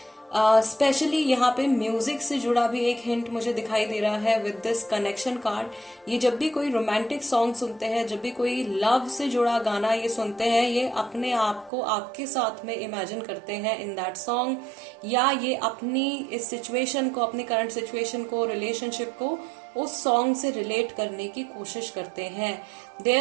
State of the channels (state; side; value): drops out; left; at 11.7 s